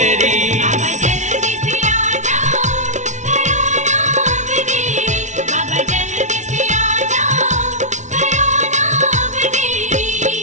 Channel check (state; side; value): late; left; 0.35 ms